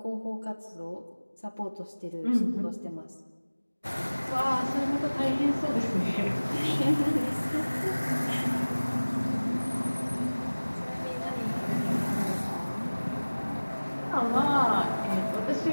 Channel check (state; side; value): inverted; both; correlation -1.00